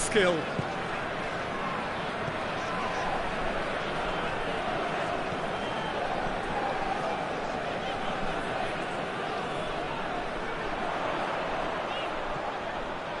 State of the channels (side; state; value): both; identical; correlation 1.00